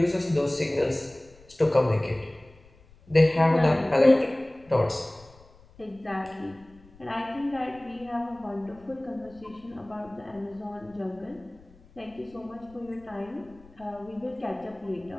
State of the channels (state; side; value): noise; left; rumble, 25 dB below the sound